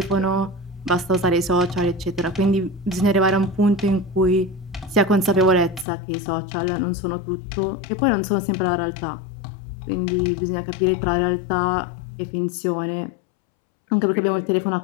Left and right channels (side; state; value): right; drops out; at 5.9 s